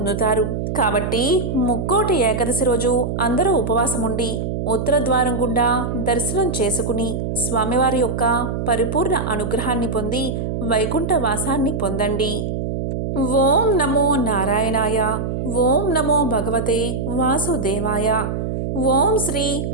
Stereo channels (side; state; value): right; noise; hum, 3 dB below the sound